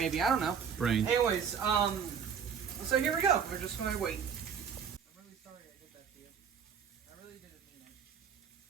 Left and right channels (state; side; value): quieter; left; 7.2 dB